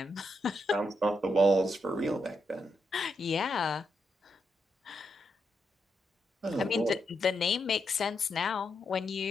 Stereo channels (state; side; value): normal; both; correlation 0.82